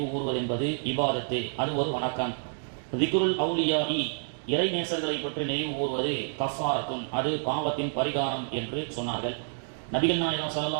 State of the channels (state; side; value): silent; left; digital silence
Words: கூறுவது என்பது இபாதத்து, அது ஒரு வணக்கம். திக்ருல் அவுலியாஇ இறைநேசர்களை பற்றி நினைவு கூறுவது கஃபாரத்துன், அது பாவத்தின் பரிகாரம் என்று சொன்னார்கள். நபிகள் நாயகம்